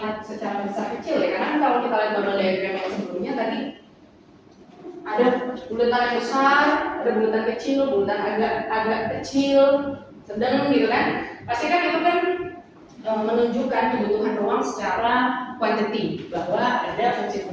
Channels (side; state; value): both; identical; correlation 1.00